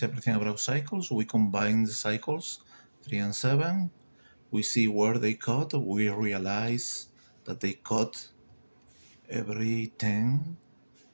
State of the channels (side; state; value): both; inverted; correlation -1.00